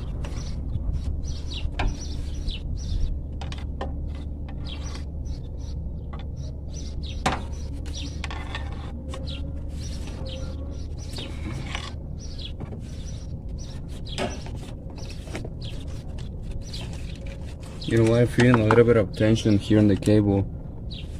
You know what, I'm feeling a little bit of tension here on the cable.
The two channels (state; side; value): identical; both; correlation 1.00